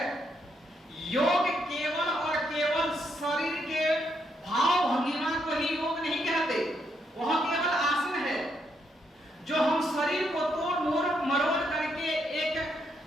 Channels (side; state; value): both; normal; correlation 0.77